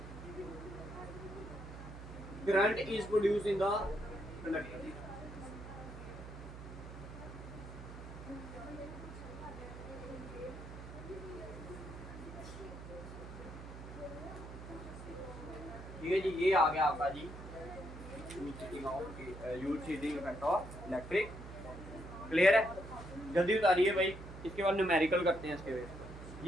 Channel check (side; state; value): right; noise; hum, 12 dB below the sound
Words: current is produced in the conductor. ठीक है जी, ये आ गया आपका जी यूज heating effect of electric. Clear है? जल्दी उतारिए भाई, इसके बाद न्यूमेरिकल करते हैं इसके बेस